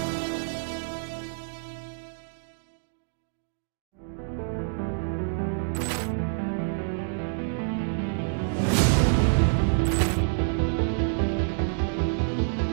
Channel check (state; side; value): silent; left; digital silence